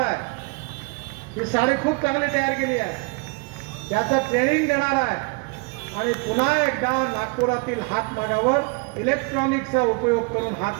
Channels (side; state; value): left; quieter; 30.7 dB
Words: आहे. ही साडी खूप चांगली तयार केली आहे. त्याचं ट्रेनिंग देणार आहे. आणि पुन्हा एकदा नागपुरातील हातमागावर इलेक्ट्रॉनिकचा उपयोग करून